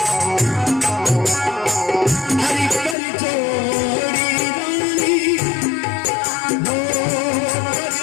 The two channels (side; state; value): right; drops out; at 3.0 s